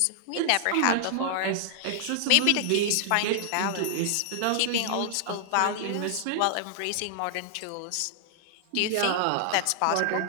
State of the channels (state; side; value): different; both; correlation -0.01